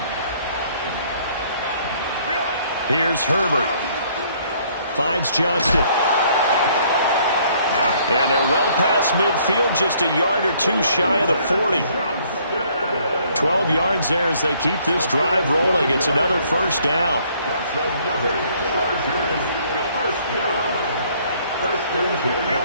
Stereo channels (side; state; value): both; inverted; correlation -0.63